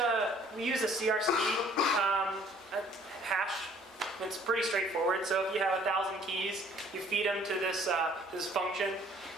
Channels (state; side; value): normal; both; correlation 0.57